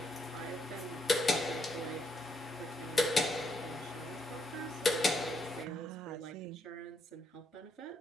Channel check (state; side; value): normal; both; correlation 0.75